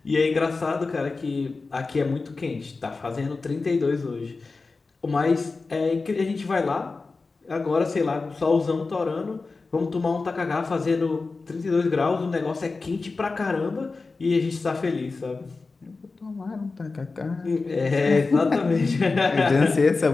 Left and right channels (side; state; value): right; quieter; 3.9 dB